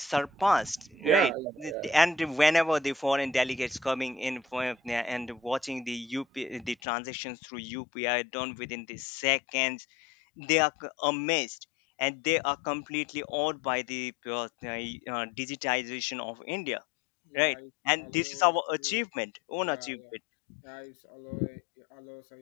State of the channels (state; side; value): drops out; right; at 6.8 s